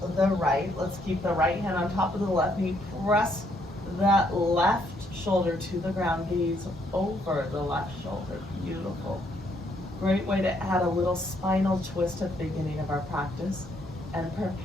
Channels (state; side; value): normal; both; correlation 0.71